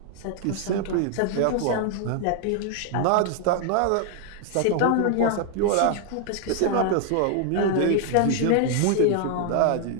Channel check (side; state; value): both; different; correlation 0.00